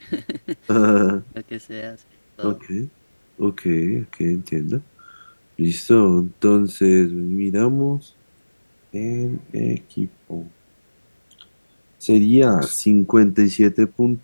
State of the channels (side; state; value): both; inverted; correlation -1.00